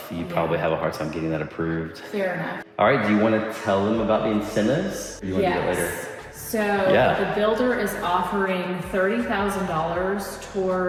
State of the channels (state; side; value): identical; both; correlation 1.00